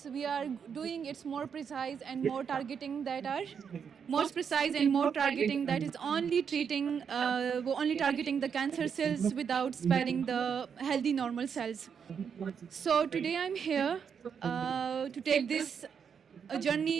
we are doing it's more precise and more targeting that are more precise and more targeting that is only targeting the cancer cells without sparing the healthy normal cells. So today I'm here to take this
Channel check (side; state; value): left; quieter; 7.0 dB